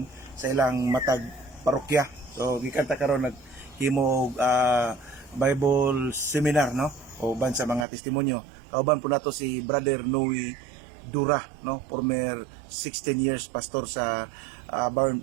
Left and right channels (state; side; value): drops out; left; at 7.9 s